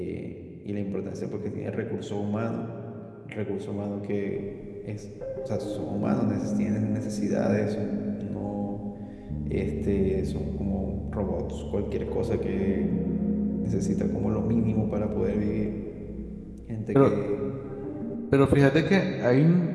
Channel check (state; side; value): identical; both; correlation 1.00